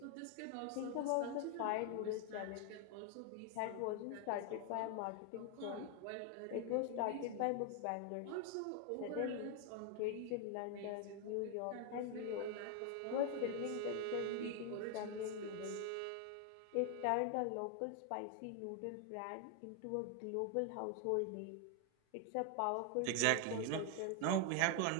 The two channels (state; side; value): different; both; correlation 0.01